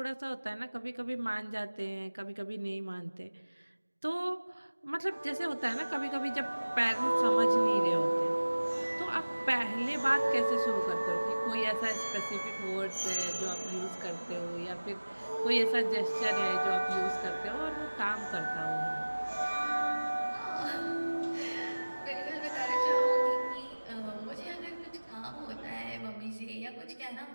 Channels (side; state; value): both; inverted; correlation -1.00